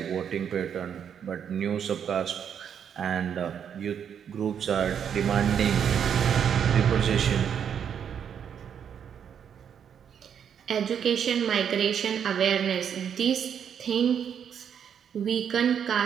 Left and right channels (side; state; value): left; quieter; 8.2 dB